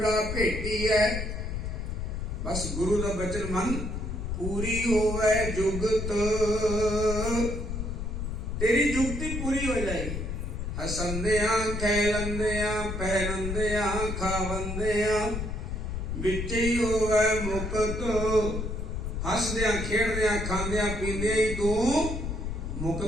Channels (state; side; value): noise; left; rumble, 4 dB below the sound